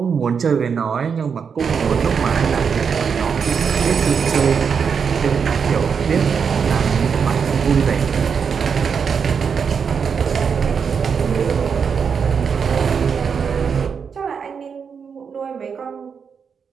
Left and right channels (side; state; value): left; quieter; 6.4 dB